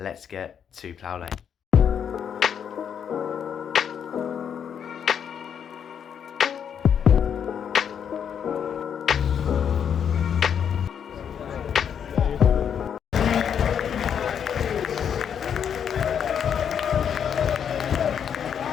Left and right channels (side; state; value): right; quieter; 8.1 dB